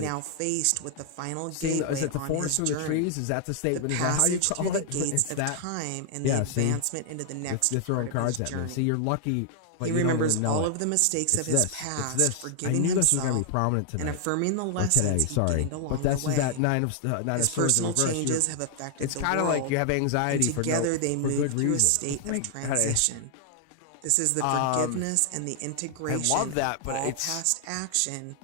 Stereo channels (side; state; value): both; different; correlation 0.00